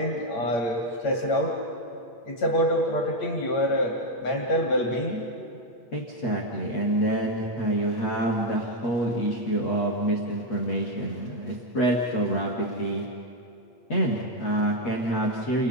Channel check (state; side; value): late; right; 8.3 ms